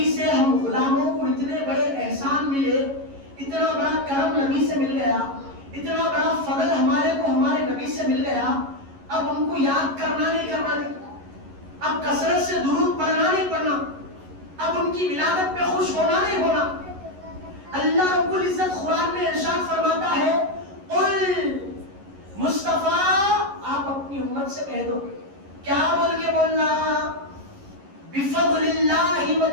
سے ہم غلاموں کو اتنے بڑے احسان ملے، اتنا بڑا کرم نبی سے مل گیا, اتنا بڑا فضل ہمارے کو ہمارے نبی سے مل گیا, اب ان کو یاد کرنا نہیں, اب کثرت سے درود پڑھنا نہیں پڑھنا, اب ان کی ولادت پہ خوش ہونا نہیں ہونا. اللہ رب العزت قرآن میں ارشاد فرماتا ہے, قل مصطفیٰ آپ اپنی امت سے کہہ دو, کیا بول کے بولنا, بفضل اللہ و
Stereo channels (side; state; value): left; late; 11 ms